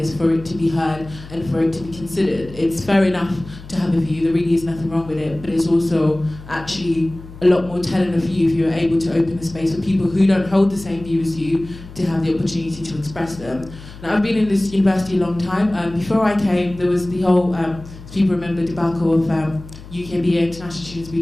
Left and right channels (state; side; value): noise; left; hum, 16 dB below the sound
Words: for it to be heard and for it to be considered. It's fair enough to have a view, there really is nothing wrong with it, but it's also actually a lot more telling of you if you're able to open the space for people who don't hold the same view as you to have the opportunity to express them. Now, I've been in this university a long time. Before I came, there was the whole, people remember the debacle of UKBA international students